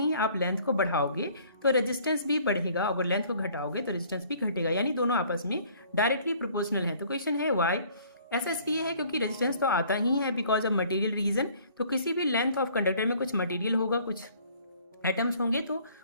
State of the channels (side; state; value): both; inverted; correlation -0.56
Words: आप लेंथ को बढ़ाओगे तो रेजिस्टेंस भी बढ़ेगा, और लेंथ को घटाओगे तो रेजिस्टेंस भी घटेगा, यानी दोनों आपस में डायरेक्टली प्रोपोर्शनल है। तो क्वेश्चन है वाई। ऐसा इसलिए है क्योंकि रेजिस्टेंस तो आता ही है बिकॉज ऑफ मटेरियल रीजन। तो किसी भी लेंथ ऑफ कंडक्टर में कुछ मटेरियल होगा, कुछ एटम्स होंगे, तो